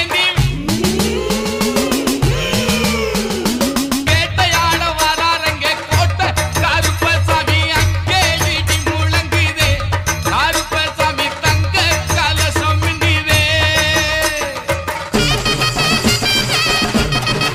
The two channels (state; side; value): identical; both; correlation 1.00